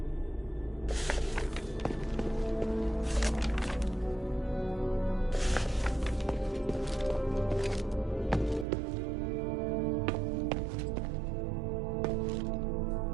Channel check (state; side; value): drops out; left; at 8.7 s